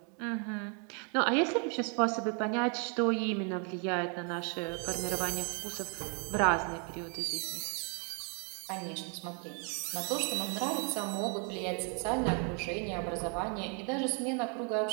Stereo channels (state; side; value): quieter; left; 38.8 dB